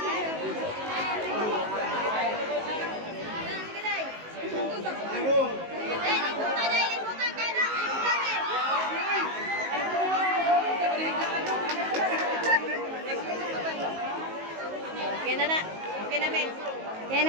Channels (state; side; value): late; left; 19 ms